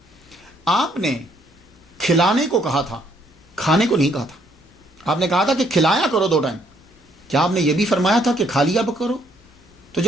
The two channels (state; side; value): normal; both; correlation 0.68